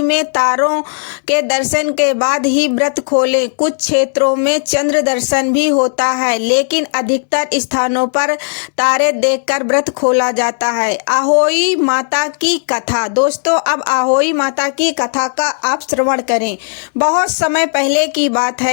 में तारों के दर्शन के बाद ही व्रत खोलें। कुछ क्षेत्रों में चंद्र दर्शन भी होता है, लेकिन अधिकतर स्थानों पर तारे देखकर व्रत खोला जाता है। आहोई माता की कथा। दोस्तों, अब आहोई माता की कथा का आप श्रवण करें। बहुत समय पहले की बात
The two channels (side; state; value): right; silent; digital silence